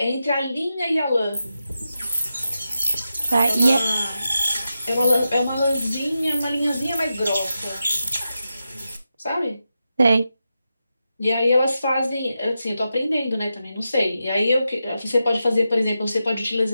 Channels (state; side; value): inverted; both; correlation -0.89